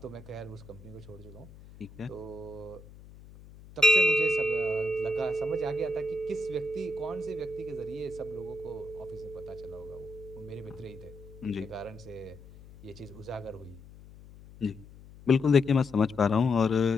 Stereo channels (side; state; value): left; noise; hum, 19 dB below the sound